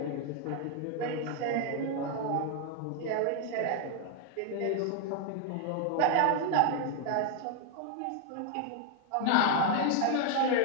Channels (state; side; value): different; both; correlation 0.00